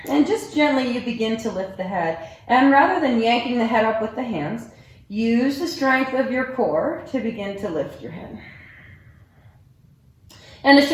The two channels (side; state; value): both; identical; correlation 1.00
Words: And just gently you begin to lift the head. And rather than yanking the head up with the hands, use the strength of your core to begin to lift your head. And the